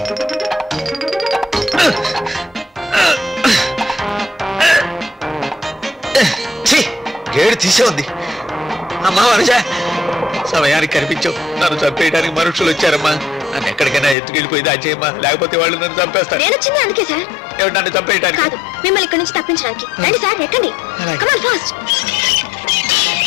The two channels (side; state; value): right; drops out; at 14.2 s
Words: గేడు తీసే ఉంది. అమ్మా వనజ, సమయానికి కనిపించావు. నన్ను చంపేయడానికి మనుషులు వచ్చారమ్మా. నన్ను ఎక్కడికైనా ఎత్తుకెళ్ళిపోయి దాచేయమ్మా, లేకపోతే వాళ్ళు నన్ను చంపేస్తారు. నేను వచ్చింది అందుకే సార్. ఏమిటి, నన్ను చంపేయడానికి? కాదు, మిమ్మల్ని ఇక్కడి నుంచి తప్పించడానికి. రండి సార్, ఎక్కండి. అలాగే. Come on, fast.